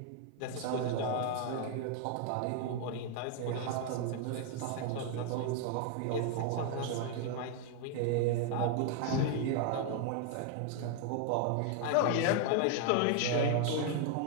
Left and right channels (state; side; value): different; both; correlation 0.00